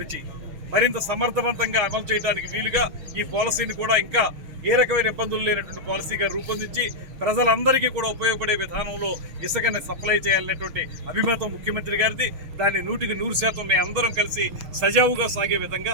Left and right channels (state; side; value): late; left; 6.4 ms